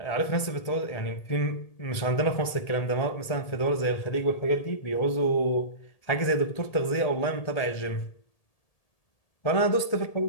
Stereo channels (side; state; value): right; late; 1.8 ms